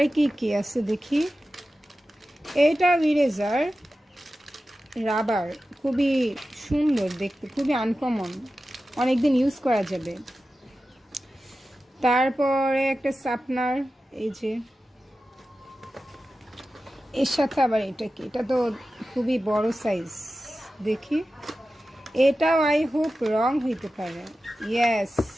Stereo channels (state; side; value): normal; both; correlation 0.94